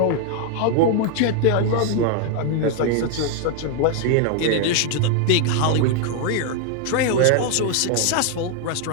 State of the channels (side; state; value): both; different; correlation 0.00